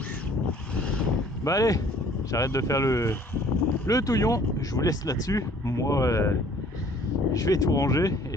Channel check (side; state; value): both; normal; correlation 0.56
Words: Bah allez, j'arrête de faire le touillon, je vous laisse là-dessus. Moi, je vais tout ranger